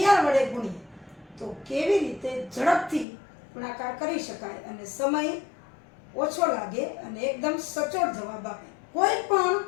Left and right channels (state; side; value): drops out; right; at 3.1 s